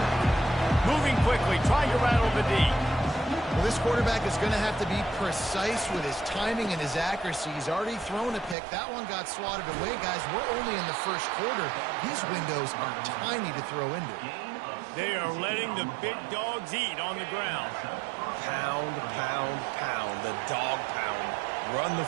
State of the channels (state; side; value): drops out; left; at 8.6 s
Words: Moving quickly, trying to rattle the D. Well, this quarterback is going to have to be precise with his timing and his accuracy. He's already thrown a pick. That one got swatted away, guys. We're only in the first quarter. These windows are tiny to throw into. They are letting the big dogs eat on the ground. Pound, pound, pound. The dog pound. Run the